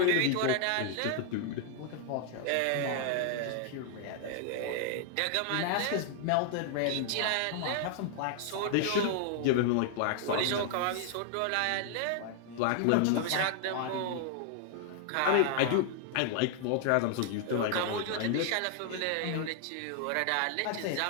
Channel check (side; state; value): both; different; correlation 0.00